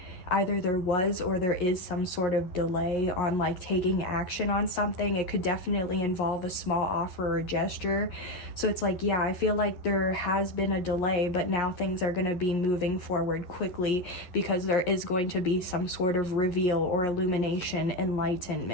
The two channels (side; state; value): right; late; 11 ms